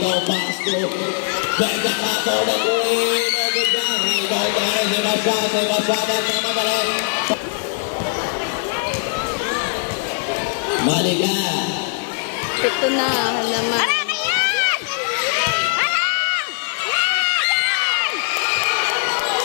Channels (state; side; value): silent; right; digital silence